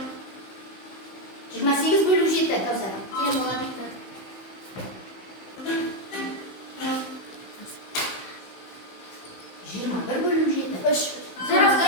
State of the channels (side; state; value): right; late; 16 ms